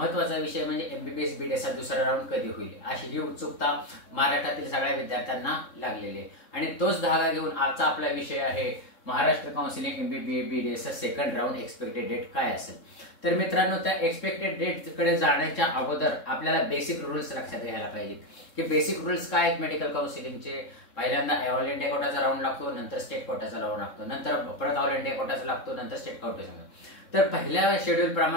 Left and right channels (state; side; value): late; right; 3.7 ms